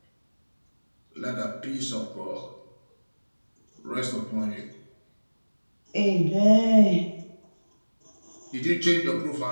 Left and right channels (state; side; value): inverted; both; correlation -1.00